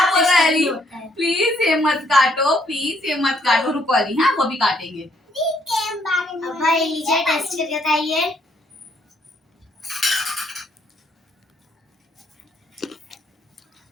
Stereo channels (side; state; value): both; normal; correlation 0.69